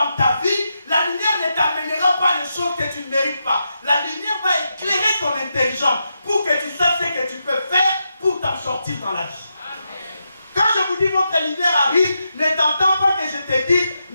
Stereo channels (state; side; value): inverted; both; correlation -0.85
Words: ta vie, la lumière ne t'amènera pas les choses que tu ne mérites pas. La lumière va éclairer ton intelligence pour que tu saches ce que tu peux faire pour t'en sortir dans la vie. Quand je vous dis votre lumière arrive, ne t'entends pas que je te dis